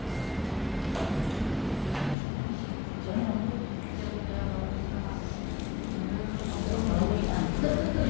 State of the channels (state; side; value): drops out; right; at 2.1 s